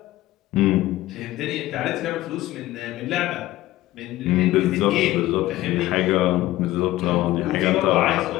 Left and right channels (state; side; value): quieter; right; 16.2 dB